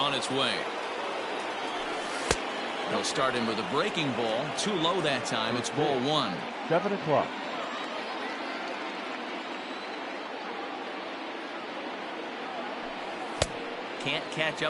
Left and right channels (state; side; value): identical; both; correlation 1.00